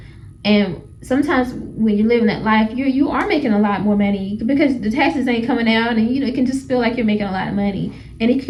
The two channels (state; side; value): identical; both; correlation 1.00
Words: and sometimes when you're living that life, you are making a lot more money because the taxes ain't coming out, and it can just feel like you're making a lot of money, and it